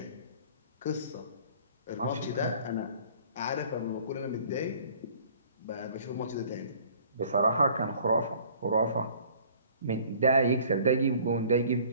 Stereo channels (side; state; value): both; inverted; correlation -0.53